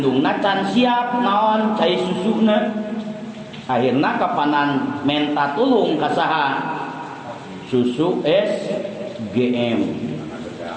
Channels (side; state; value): both; identical; correlation 1.00